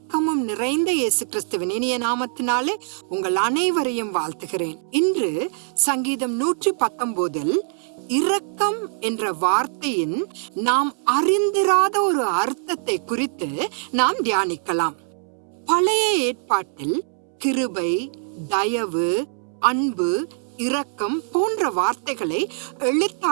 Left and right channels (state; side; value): silent; left; 63 dB below the other